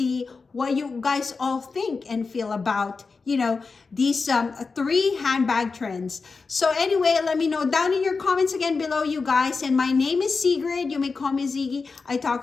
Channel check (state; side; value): quieter; right; 4.5 dB